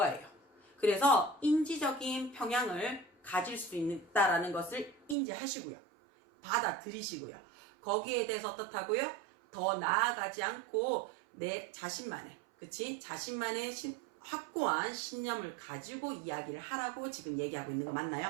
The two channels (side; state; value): left; drops out; at 5.2 s